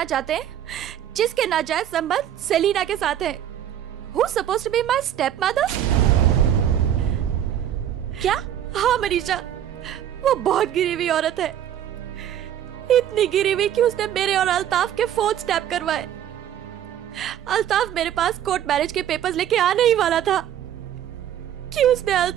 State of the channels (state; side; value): quieter; left; 10.6 dB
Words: चाहते हैं जिसके नाजायज संबंध सेलिना के साथ है। Who's supposed to be my stepmother? क्या? हाँ मनीषा, वो बहुत गिरी हुई औरत है। इतनी गिरी हुई कि उसने मेरे और अल्ताफ के फोन स्टैप करवाए। अल्ताफ मेरे पास कोर्ट मैरिज के पेपर्स लेके आने ही वाला था कि उसने